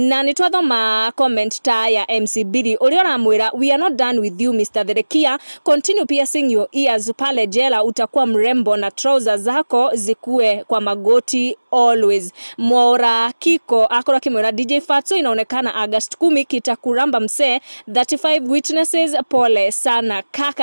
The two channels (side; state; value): both; inverted; correlation -1.00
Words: ni twathoma comment ta ya MC Billy uria uramwira we are not done with you Mr. Therekia, continue piercing your ears pale jela utakuwa mrembo na trousers zako zikue kwa magoti always. Mwora Kiko akora kimwira DJ Fatxo inaonekana August 10 kitakuramba mse 35 witnesses pole sana